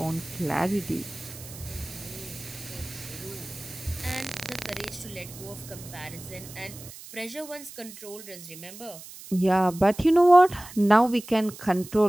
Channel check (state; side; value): noise; right; hiss, 16 dB below the sound